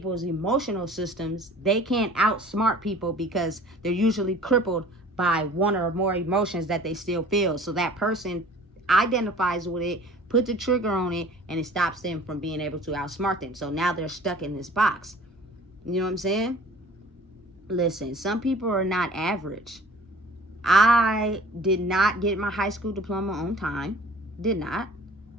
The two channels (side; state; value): both; normal; correlation 0.47